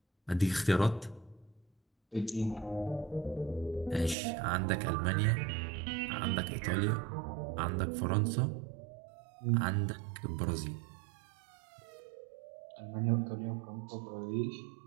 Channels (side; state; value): left; drops out; at 4.2 s